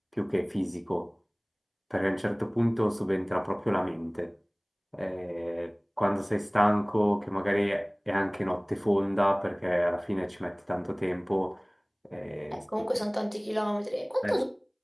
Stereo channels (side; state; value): both; identical; correlation 1.00